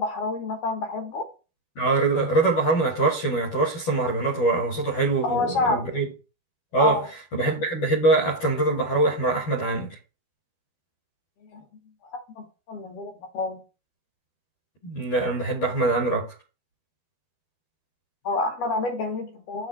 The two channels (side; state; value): right; late; 12 ms